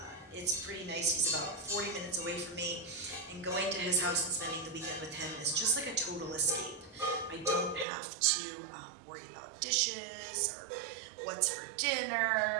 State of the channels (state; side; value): drops out; left; at 7.9 s